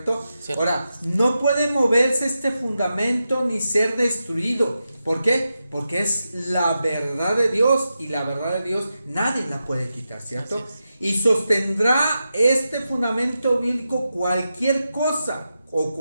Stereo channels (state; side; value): inverted; both; correlation -0.89